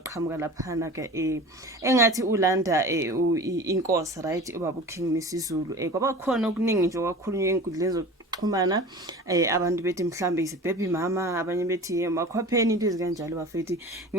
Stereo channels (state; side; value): normal; both; correlation 0.37